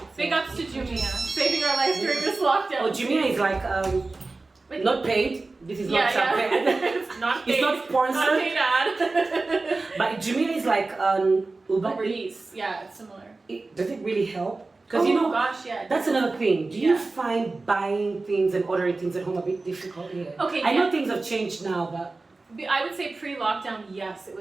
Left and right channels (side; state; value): left; quieter; 3.5 dB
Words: Big ups to Jumia, saving our life during this lockdown. Oh, Jumia is like not paid. This is not paid. It's not paid. It's not sponsored. Not paid ad. But Jumia is like Uber Eats. Yeah, it's similar. Does it really help? Because that's another thing. Do you find buying things and ordering things at home a bit difficult here? Okay, I know things have changed now, but I would say pre-lockdown, yes, it